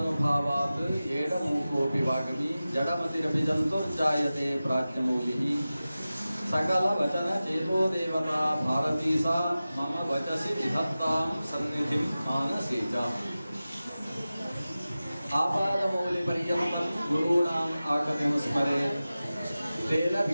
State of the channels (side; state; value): both; inverted; correlation -0.95